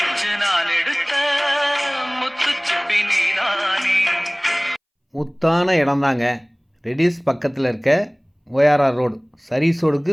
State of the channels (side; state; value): both; identical; correlation 1.00